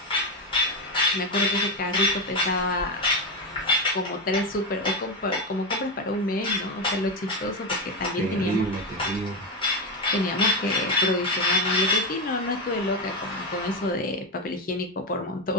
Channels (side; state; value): both; normal; correlation 0.12